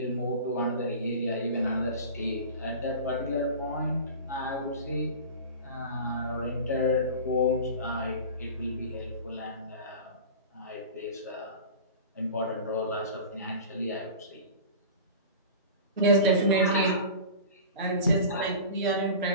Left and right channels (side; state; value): both; inverted; correlation -0.35